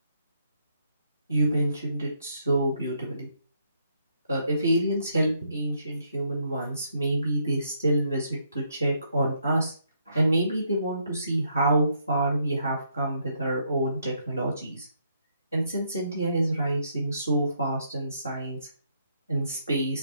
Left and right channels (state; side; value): inverted; both; correlation -0.74